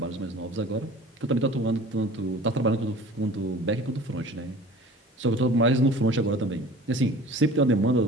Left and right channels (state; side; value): normal; both; correlation 0.43